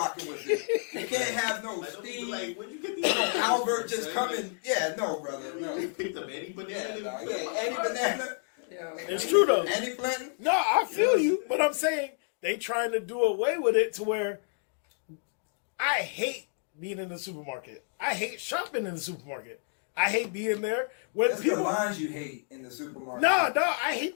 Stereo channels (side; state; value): right; silent; 58 dB below the other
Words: with it. You can't have no Steve, where'd you get these Albert just coming. Yeah, no, brother. No. You picked up any banana. Any banana. It's true though. Any plantain? No, I feel you, but I'm saying they trying to do away with it to where I hate being in the supermarket. I hate shopping in the supermarket. I hate being there. That's the lines you hate in the supermarket. No, I hate